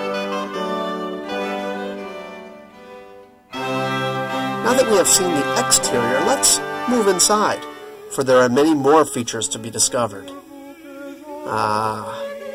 Now that we have seen the exterior, let's move inside, for there are many more features to be discovered.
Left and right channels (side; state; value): both; identical; correlation 1.00